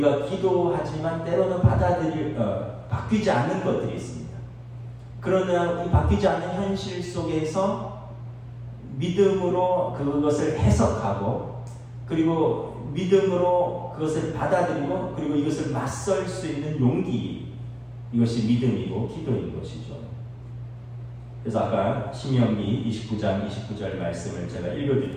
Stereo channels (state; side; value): identical; both; correlation 1.00